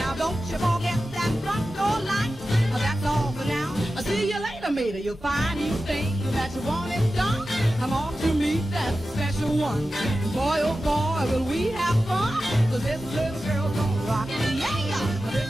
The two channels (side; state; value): both; normal; correlation 0.93